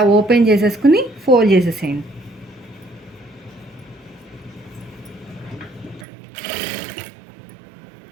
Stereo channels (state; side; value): drops out; left; at 6.1 s